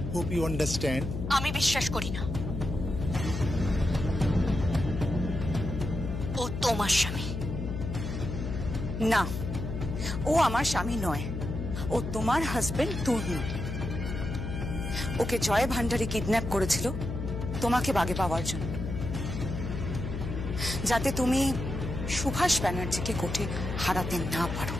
Hope you understand. আমি বিশ্বাস করি না। ও তোমার স্বামী। না, ও আমার স্বামী নয়, ও তোমার হাজবেন্ড তর্ণ। ওকে জয় ভান্ডারী কিডন্যাপ করেছিল তোমাকে বাগে পাওয়ার জন্য, যাতে তুমি সুভাষ ব্যানার্জিকে কোর্টে হারাতে না পারো।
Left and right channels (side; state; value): left; noise; hum, 5 dB below the sound